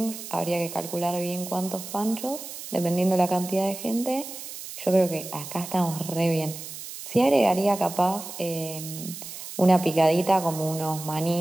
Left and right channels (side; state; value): right; noise; hiss, 11 dB below the sound